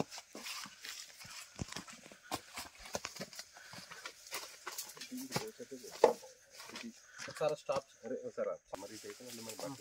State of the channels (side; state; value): both; identical; correlation 1.00